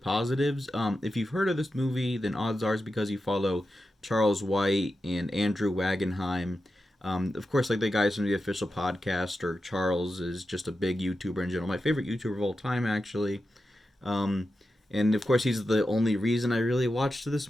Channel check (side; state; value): both; normal; correlation 0.90